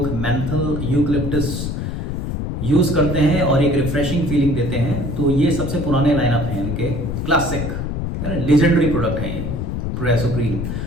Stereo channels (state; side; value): noise; left; rumble, 3 dB below the sound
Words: मेंथल यूकलिप्टस यूज करते हैं और एक रिफ्रेशिंग फीलिंग देते हैं। तो ये सबसे पुराने लाइनअप हैं इनके, क्लासिक है ना, लेजेंडरी प्रोडक्ट हैं ये प्रोरेसो ग्रीन।